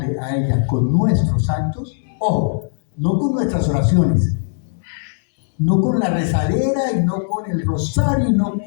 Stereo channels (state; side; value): silent; right; digital silence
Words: a ella con nuestros actos, ojo, no con nuestras oraciones, no con la rezadera y no con el rosario y no